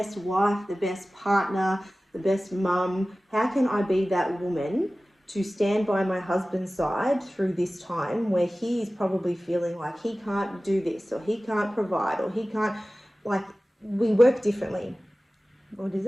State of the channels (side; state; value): both; normal; correlation 0.97